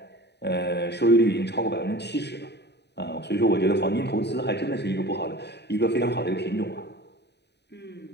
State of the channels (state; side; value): late; right; 0.49 ms